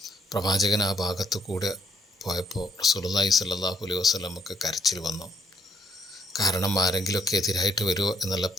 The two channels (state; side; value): normal; both; correlation 0.69